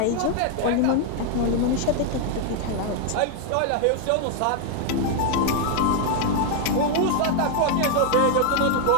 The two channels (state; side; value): different; both; correlation 0.00